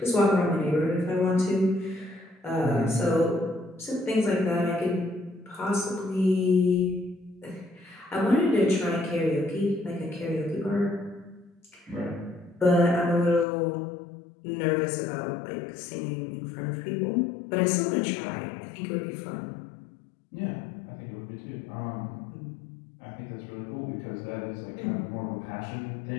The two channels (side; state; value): right; drops out; at 13.5 s